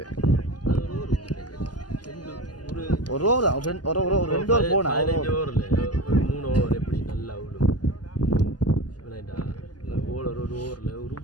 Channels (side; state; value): right; late; 0.70 ms